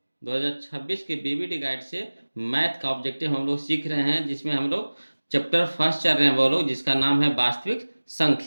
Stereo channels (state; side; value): inverted; both; correlation -1.00